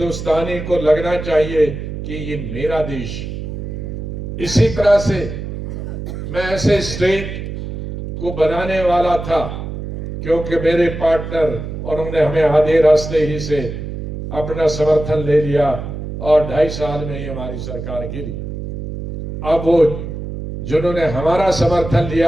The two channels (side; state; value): right; noise; hum, 7 dB below the sound